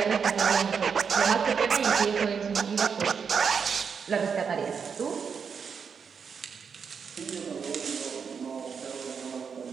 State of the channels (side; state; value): left; quieter; 6.3 dB